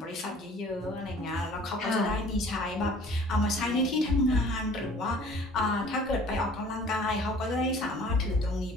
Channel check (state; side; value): normal; both; correlation 0.50